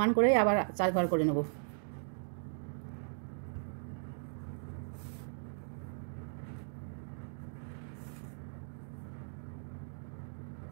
করে আবার 4 ঘর করে নেব।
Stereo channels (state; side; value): silent; left; digital silence